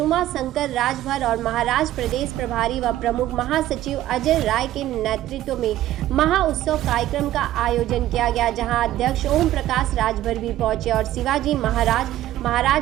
शंकर राजभर और महाराष्ट्र प्रदेश प्रभारी व प्रमुख महासचिव अजय राय के नेतृत्व में महाउत्सव कार्यक्रम का आयोजन किया गया, जहां अध्यक्ष ओम प्रकाश राजभर भी पहुंचे और शिवाजी महाराज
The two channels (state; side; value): quieter; left; 14.0 dB